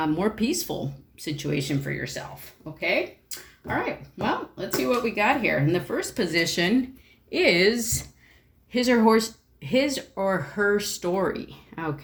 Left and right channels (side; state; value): both; identical; correlation 1.00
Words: more peaceful situation for yourself, okay? All right, well, let's see what we got here. In the first position is his or her story,